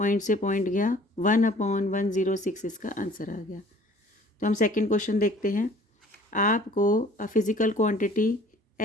से पॉइंट गया 1/106, इसका आंसर आ गया। तो हम सेकेंड क्वेश्चन देखते हैं। आपको फिजिकल क्वांटिटी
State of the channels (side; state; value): both; normal; correlation 0.52